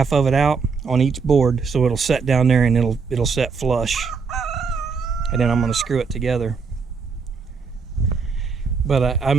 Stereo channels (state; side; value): quieter; left; 5.2 dB